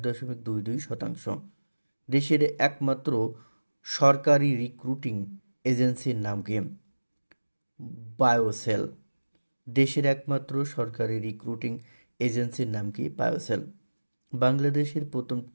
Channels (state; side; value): inverted; both; correlation -1.00